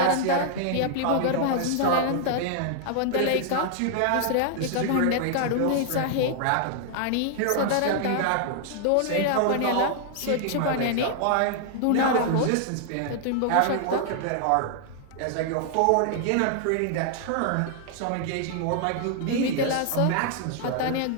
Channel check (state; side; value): different; both; correlation 0.00